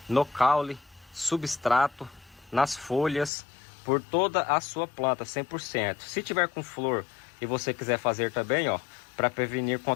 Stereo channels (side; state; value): right; drops out; at 3.3 s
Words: no caule, substrato, nas folhas, por toda a sua planta, 100%. Se tiver com flor e você quiser fazer também, ó, para prevenir